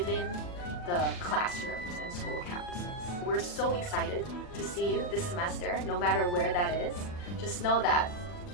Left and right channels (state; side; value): late; right; 40 ms